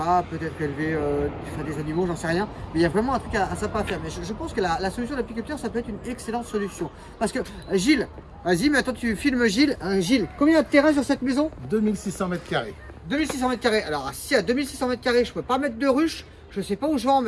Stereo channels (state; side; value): identical; both; correlation 1.00